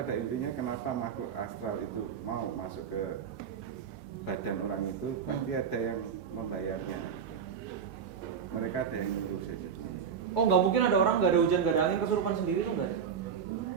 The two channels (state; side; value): quieter; left; 7.2 dB